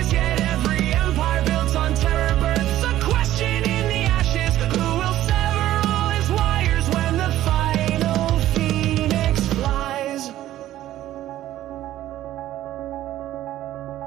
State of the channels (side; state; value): left; quieter; 13.6 dB